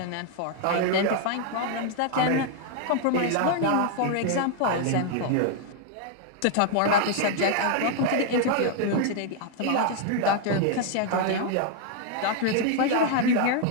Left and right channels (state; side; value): different; both; correlation 0.00